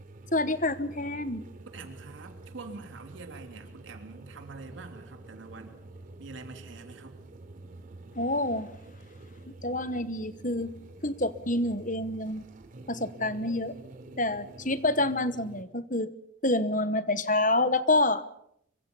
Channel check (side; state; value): both; normal; correlation -0.07